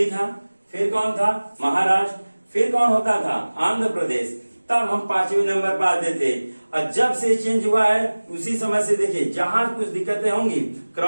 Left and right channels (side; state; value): both; inverted; correlation -1.00